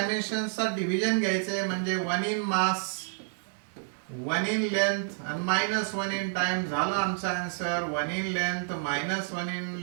डिव्हिजन घ्यायचे, म्हणजे 1 इन मास 1 इन लेंथ आणि -1 इन टाइम झाला आमचा answer. 1 in length -1 in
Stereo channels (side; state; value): left; silent; digital silence